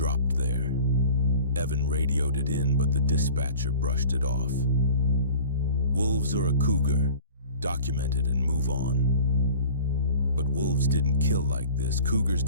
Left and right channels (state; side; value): inverted; both; correlation -0.44